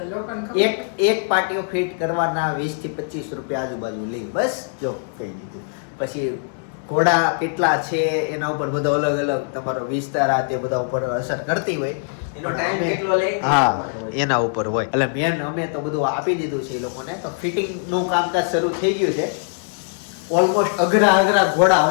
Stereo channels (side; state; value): right; silent; digital silence